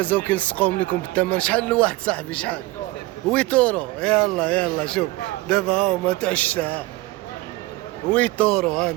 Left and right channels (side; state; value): left; quieter; 20.1 dB